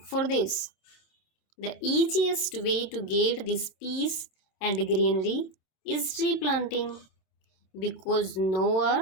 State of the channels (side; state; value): right; late; 27 ms